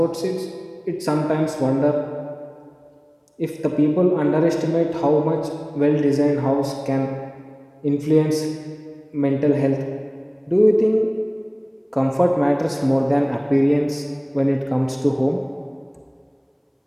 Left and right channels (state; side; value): identical; both; correlation 1.00